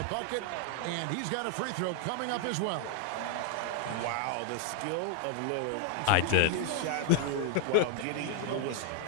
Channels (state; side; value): different; both; correlation 0.00